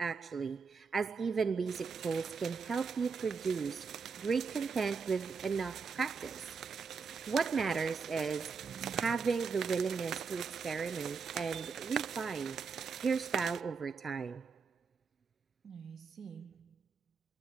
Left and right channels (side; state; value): left; quieter; 5.4 dB